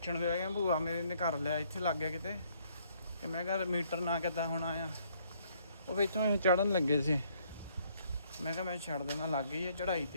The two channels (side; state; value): both; inverted; correlation -0.67